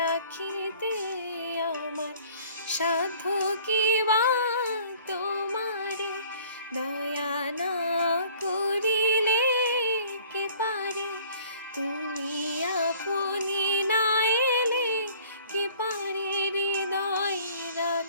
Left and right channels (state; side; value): inverted; both; correlation -0.53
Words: আমার সাধ্য কি বা তোমারে দয়া না করিলে কে পারে, তুমি আপনি না এলে কে পারে হৃদয়